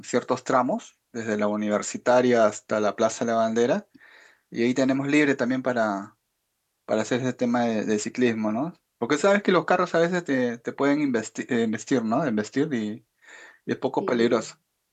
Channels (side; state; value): both; identical; correlation 1.00